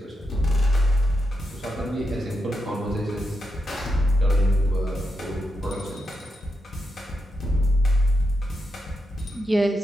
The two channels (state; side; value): normal; both; correlation 0.85